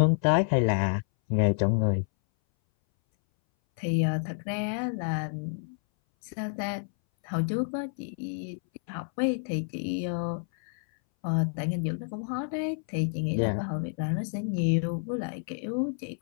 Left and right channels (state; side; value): silent; right; 59 dB below the other